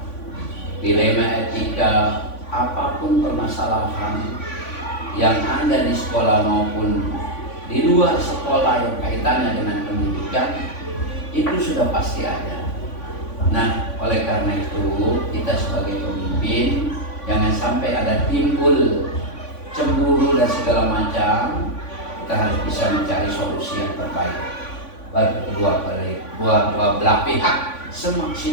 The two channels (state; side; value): late; right; 3.5 ms